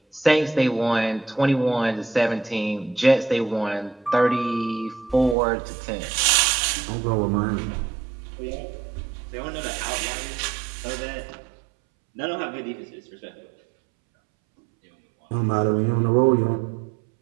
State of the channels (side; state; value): left; drops out; at 5.4 s